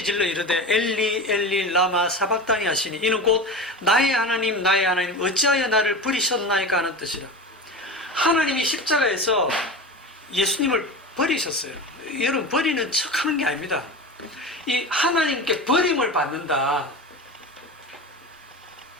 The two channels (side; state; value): both; normal; correlation 0.28